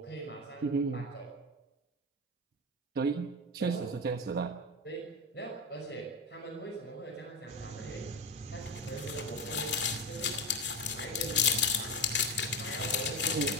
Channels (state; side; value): normal; both; correlation 0.18